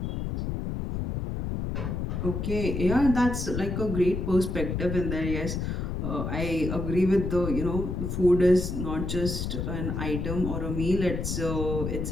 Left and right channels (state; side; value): noise; left; rumble, 3 dB below the sound